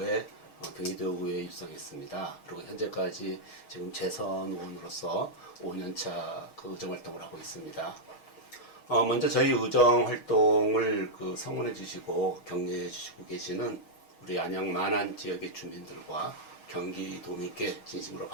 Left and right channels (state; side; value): late; right; 6.4 ms